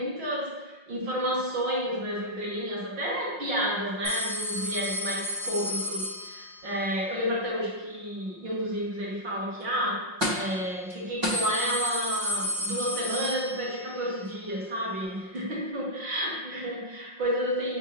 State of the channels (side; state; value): left; late; 5.6 ms